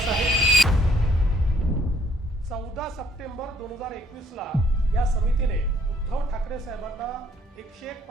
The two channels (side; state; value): both; normal; correlation 0.64